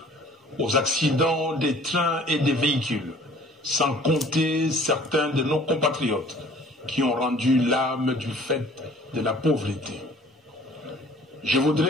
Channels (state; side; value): normal; both; correlation 0.51